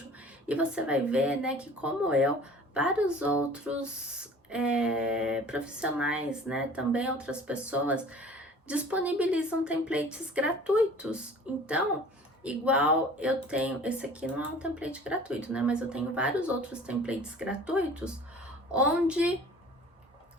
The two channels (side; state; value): both; normal; correlation 0.46